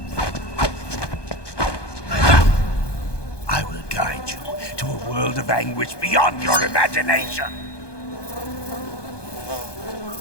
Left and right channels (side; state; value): right; late; 1.2 ms